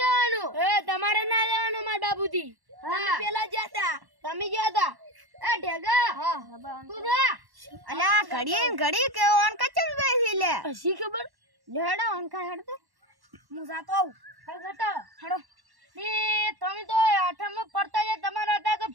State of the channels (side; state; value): left; late; 1.1 ms